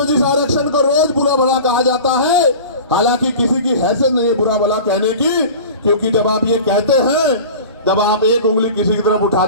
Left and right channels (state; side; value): inverted; both; correlation -0.37